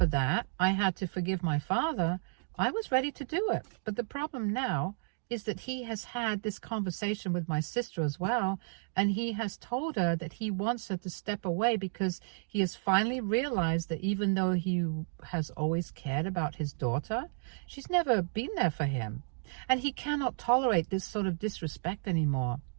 that, I had to forgive my father, I was ready to do it. But the problem now is that he has had this conversation with my sister as well, and he has told her that he wants her to step away because he has finally realized that even though he has always cared about his daughter, she's never been there for him, and he cannot tolerate this sort of disrespect anymore.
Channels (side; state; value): left; silent; digital silence